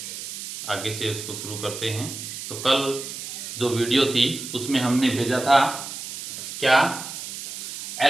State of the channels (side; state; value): right; noise; hiss, 8 dB below the sound